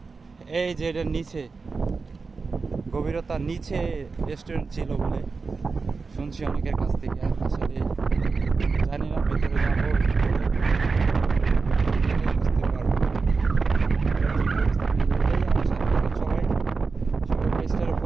এই যে এটার নিচে, গভীরতার নিচে রেস্টুরেন্ট ছিল বলে শুনছি অনেকের কাছ থেকে। আসলে জানি না, ভিতরে যাবো বুঝতে পারবো। সবাই পেজটারে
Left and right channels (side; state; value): left; quieter; 4.5 dB